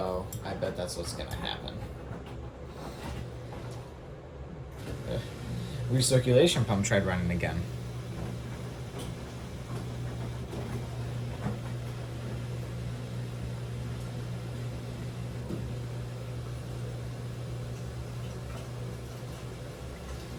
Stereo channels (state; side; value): identical; both; correlation 1.00